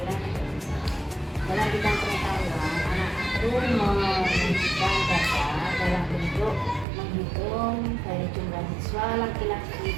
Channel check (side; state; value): left; drops out; at 6.9 s